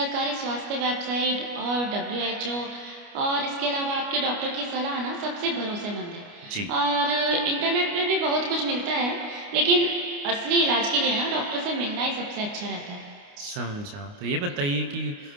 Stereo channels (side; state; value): left; late; 29 ms